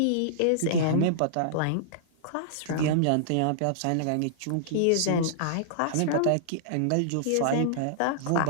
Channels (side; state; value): both; different; correlation -0.02